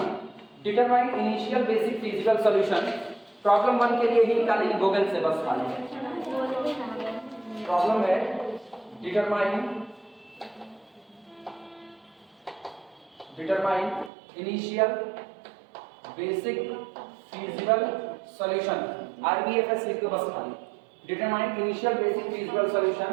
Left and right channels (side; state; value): left; drops out; at 14.1 s